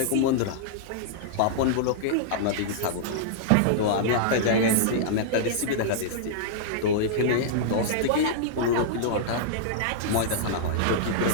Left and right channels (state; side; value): different; both; correlation -0.02